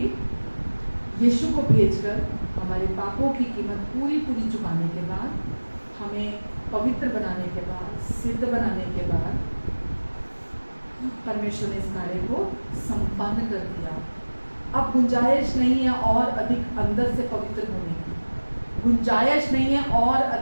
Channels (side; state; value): both; inverted; correlation -1.00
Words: यीशु को भेजकर हमारे पापों की कीमत पूरी चुकाने के बाद, हमें पवित्र बनाने के बाद, सिद्ध बनाने के बाद, परमेश्वर ने इस कार्य को संपन्न कर दिया। अब गुंजाइश नहीं है और अधिक अंदर से पवित्र होने की, गुंजाइश नहीं है और